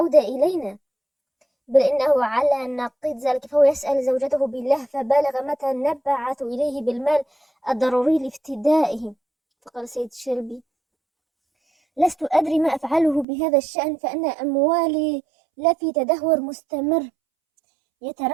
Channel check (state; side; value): drops out; left; at 13.2 s